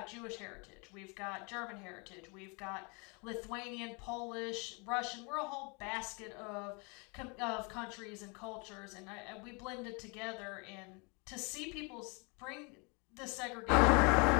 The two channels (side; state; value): right; quieter; 31.9 dB